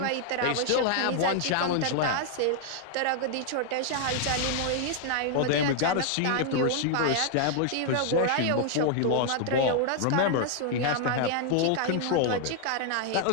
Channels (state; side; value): different; both; correlation 0.00